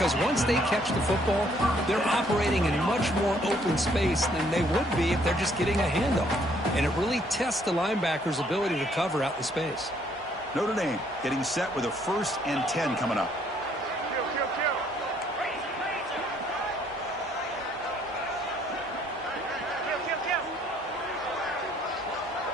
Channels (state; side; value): normal; both; correlation 0.65